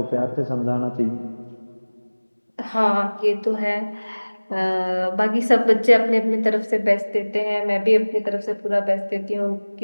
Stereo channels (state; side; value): inverted; both; correlation -1.00